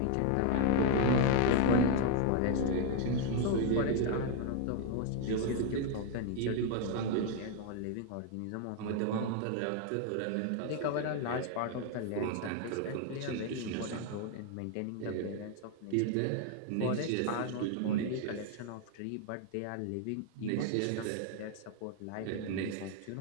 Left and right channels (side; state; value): both; different; correlation 0.00